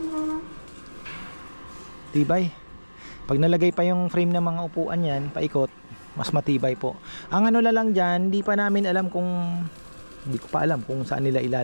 Tibay. Pag nalagay pa yung frame ng mga upuan yan, paikot, mas matibay po. Ang lang dyan, hindi ko pa alam kung saan nila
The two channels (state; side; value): inverted; both; correlation -1.00